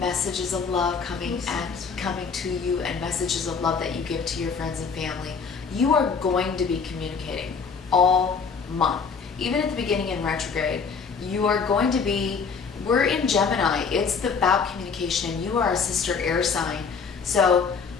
of love coming to you, and messages of love that you give to your friends and family. You are going to be communicating all month. Even at the beginning in retrograde, you are going to be, we're in Gemini. It's about communication, and you are a sister air sign. So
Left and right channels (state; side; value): quieter; right; 5.5 dB